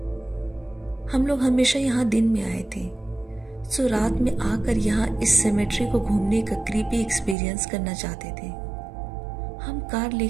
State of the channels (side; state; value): left; drops out; at 7.4 s